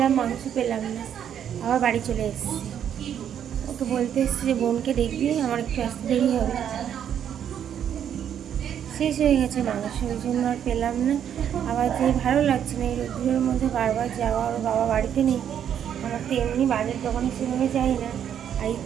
মাংস পেলাম না, আবার বাড়ি চলে এসেছি। ওকে বলতে এসেছি যে বোনকে দেখবি, আমার একটু আসতে দেরি হবে। শেষ হয়ে গেছে মাংস, ওই জন্য আর পেলাম না। আবার যে ভালো লাগছে না এই রোদ্দুরের মধ্যে বারবার যাওয়া, ওর বাবা বাড়িতে নেই। আমার তো এমনি বাজার দোকানে সেভাবে যাই না, আর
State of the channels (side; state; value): left; quieter; 9.2 dB